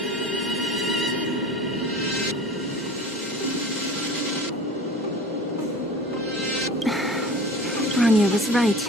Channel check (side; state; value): both; normal; correlation 0.39